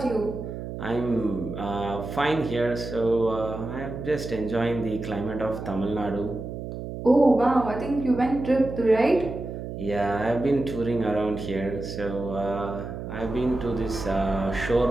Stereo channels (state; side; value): noise; right; hum, 7 dB below the sound